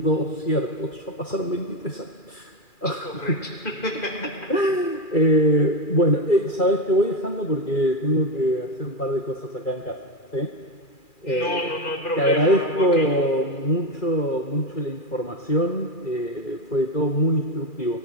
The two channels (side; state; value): right; late; 2.4 ms